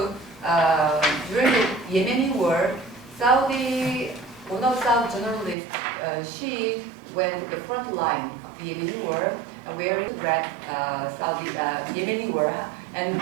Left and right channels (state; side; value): drops out; left; at 5.6 s